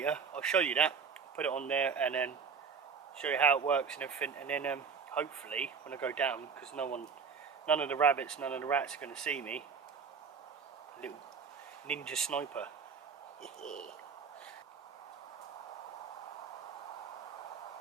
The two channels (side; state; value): left; quieter; 5.8 dB